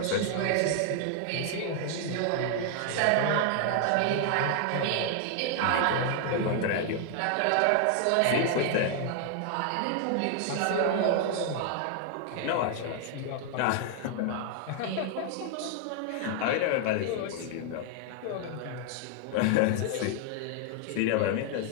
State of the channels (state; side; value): different; both; correlation 0.00